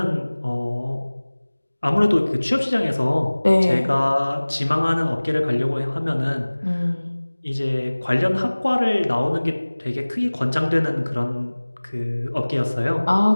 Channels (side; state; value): both; inverted; correlation -1.00